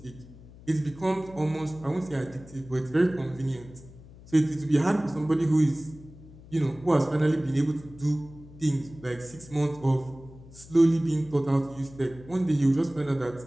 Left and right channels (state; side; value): noise; left; hum, 20 dB below the sound